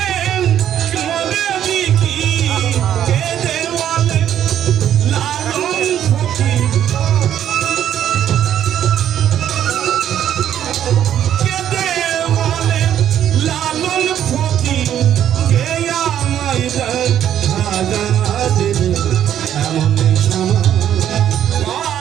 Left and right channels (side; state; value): left; quieter; 10.4 dB